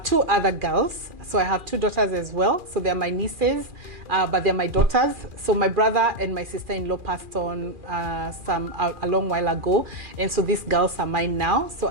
2 other girls. So I have 2 daughters as well. So they're my nieces, but they're my daughters. So my brother and my sister-in-law passed on a long while ago. And so these girls are mine now. So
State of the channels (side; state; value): left; late; 2.4 ms